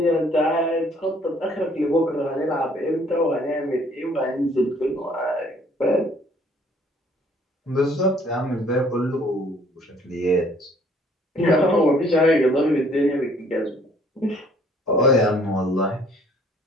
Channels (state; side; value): normal; both; correlation 0.60